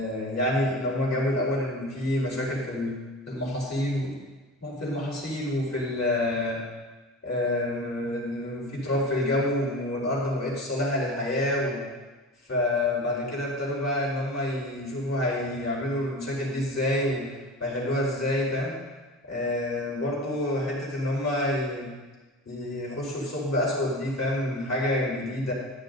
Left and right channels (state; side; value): normal; both; correlation 0.33